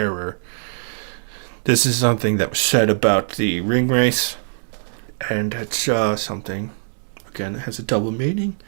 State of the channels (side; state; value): left; silent; digital silence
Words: This is something that was said about the ring race, and it's something, again, it has a double meaning,